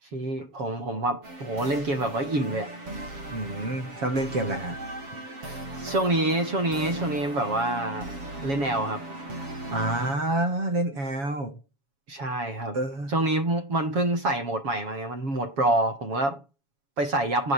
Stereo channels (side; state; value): left; late; 7.2 ms